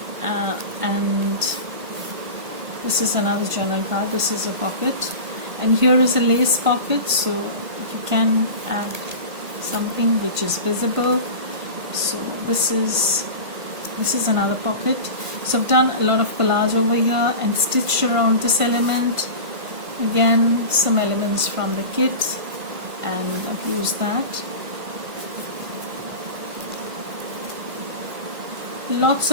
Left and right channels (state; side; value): late; left; 1.5 ms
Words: And this is another journal card. This is a pocket, and here is a lace pocket, so you can add something which is visible. So this is another pocket. So I've done a lot of collage over here and stitched around this element. Again, some elements from the kit, and I've used that. Lots